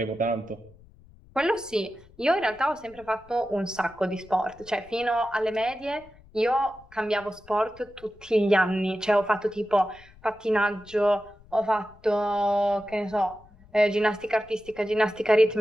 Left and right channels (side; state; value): left; noise; rumble, 25 dB below the sound